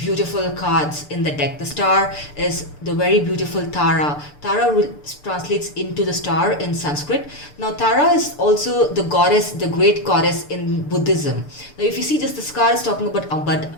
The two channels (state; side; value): late; right; 6.8 ms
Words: cards in the deck. The star is the very beautiful Tara. Tara translates into the star in Sanskrit. Now Tara is also the goddess, the great goddess in Buddhism. Now if you see just this card is talking